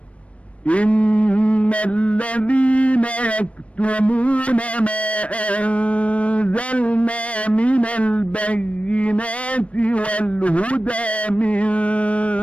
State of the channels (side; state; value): right; late; 0.063 ms